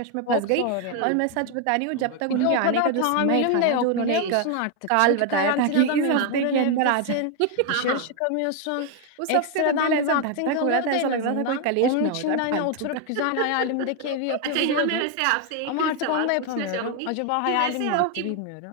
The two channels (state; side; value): different; both; correlation 0.01